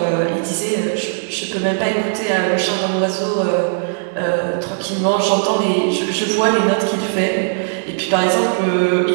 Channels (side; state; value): left; silent; digital silence